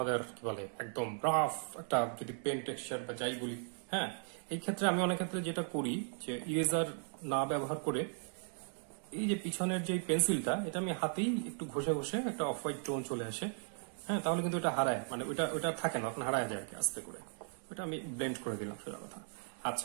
কি বলে একদম রাফ একটা যদি পেন টেক্সচার বা যাই বলি। হ্যাঁ, এই ক্ষেত্রে আমি অনেক ক্ষেত্রে যেটা করি যে ইরেজার না ব্যবহার করে এই যে পিছনের যে পেন্সিলটা, এটা আমি হাতেই একটু ঘষে ঘষে একটা অফ হোয়াইট টোন চলে আসে। হ্যাঁ, তাহলে কিন্তু এটা হারায়, মানে ওটা থাকে না, এখন হারায় যায় আর কি আস্তে করে। ওটা আমি ব্লেন্ড করে দিলাম, সোজা কথা।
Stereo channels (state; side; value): silent; left; 53 dB below the other